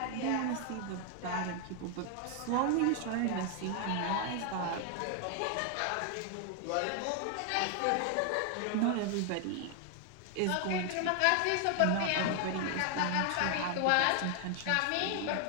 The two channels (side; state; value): both; different; correlation 0.00